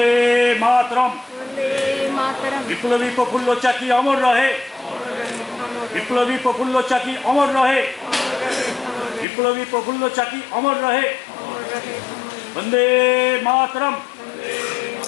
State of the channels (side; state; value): right; drops out; at 9.2 s